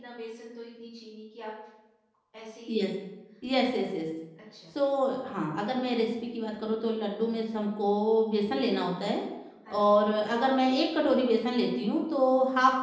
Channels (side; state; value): both; identical; correlation 1.00